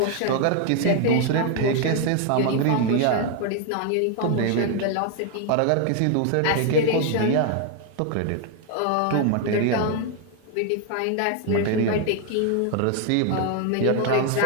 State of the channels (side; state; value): both; different; correlation 0.00